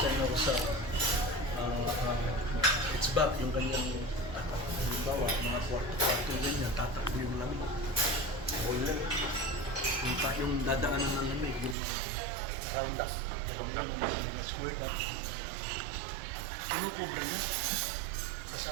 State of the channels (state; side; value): drops out; left; at 11.8 s